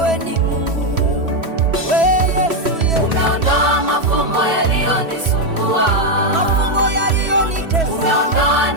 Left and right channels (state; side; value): late; left; 3.0 ms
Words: ni Mungu, wewe Yesu, mafumbo yaliyonitesa,